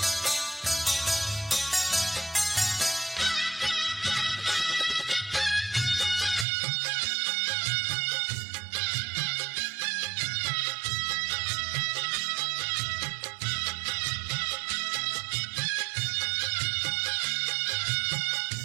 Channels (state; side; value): drops out; left; at 6.5 s